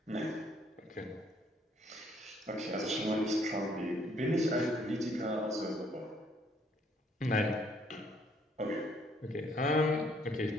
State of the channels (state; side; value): normal; both; correlation 0.66